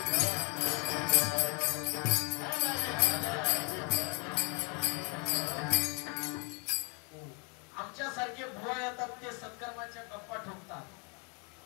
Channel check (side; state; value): right; quieter; 31.8 dB